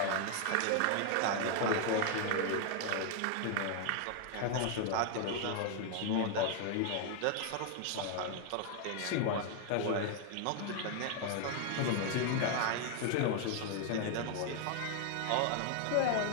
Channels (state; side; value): different; both; correlation 0.00